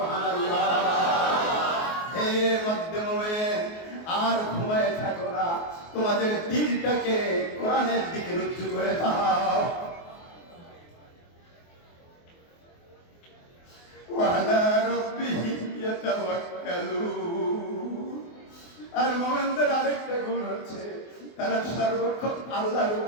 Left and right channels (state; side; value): late; right; 24 ms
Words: হে মধ্যে মুমিন, আর ঘুমায় থাকো না, তোমাদের দিলটাকে কোরআনের দিকে রুজু করে দাও। ওয়ালা রাব্বিহিম ইয়াতাওয়াক্কালুন, আর মুমিনদের আরেকটা গুণ হচ্ছে তারা সর্বক্ষণ আল্লাহর